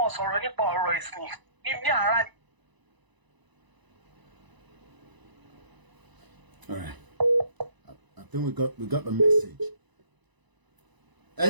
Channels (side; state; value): left; late; 1.0 ms